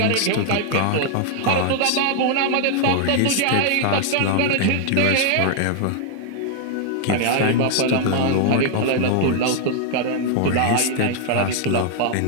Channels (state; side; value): different; both; correlation 0.00